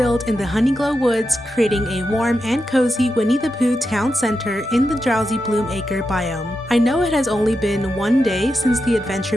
in the Honeyglow Woods, creating a warm and cozy Winnie the Pooh town center in the Drowsybloom Acre biome. I know it has only been one day since the adventure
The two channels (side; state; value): both; normal; correlation 0.88